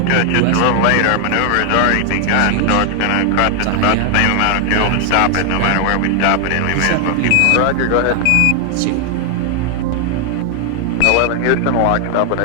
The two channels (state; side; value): different; both; correlation 0.00